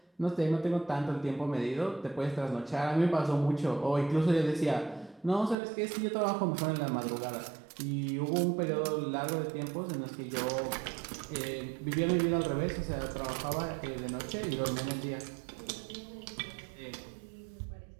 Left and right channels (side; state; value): left; drops out; at 5.6 s